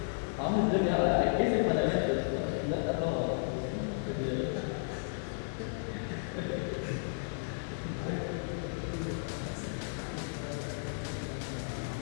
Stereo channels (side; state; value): right; silent; digital silence